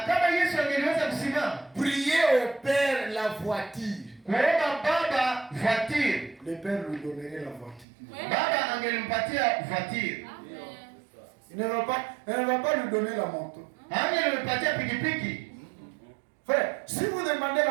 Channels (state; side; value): drops out; left; at 7.9 s